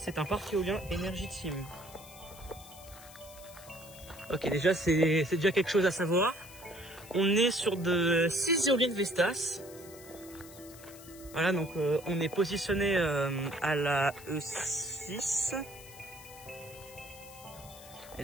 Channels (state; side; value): noise; left; hiss, 18 dB below the sound